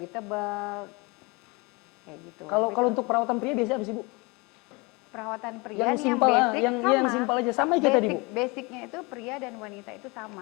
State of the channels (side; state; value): right; quieter; 26.8 dB